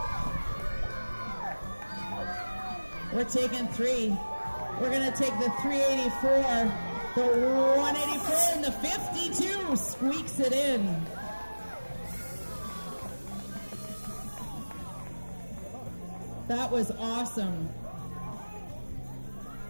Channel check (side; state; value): both; inverted; correlation -1.00